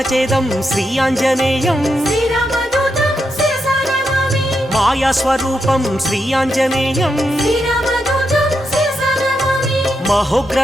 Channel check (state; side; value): normal; both; correlation 0.84